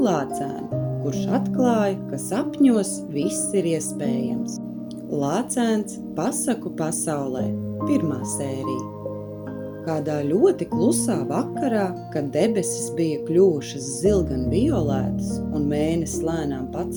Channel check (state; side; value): identical; both; correlation 1.00